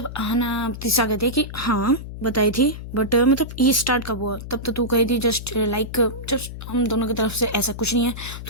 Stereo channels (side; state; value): left; noise; hum, 10 dB below the sound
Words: आना तीसरा कहती है कि हाँ बताई थी, बट मतलब ये स्टार्ट कब हुआ, तब तो तू कही थी जस्ट लाइक जस्ट हम दोनों की तरफ से ऐसा कुछ नहीं है,